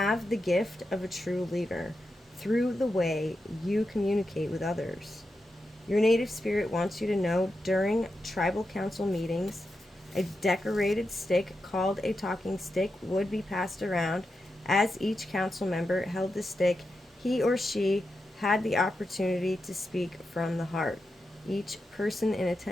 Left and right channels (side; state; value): both; normal; correlation 0.88